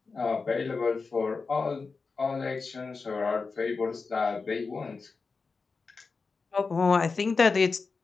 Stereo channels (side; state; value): right; quieter; 4.5 dB